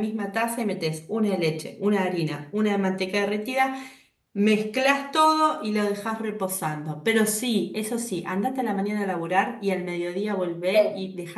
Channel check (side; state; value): both; identical; correlation 1.00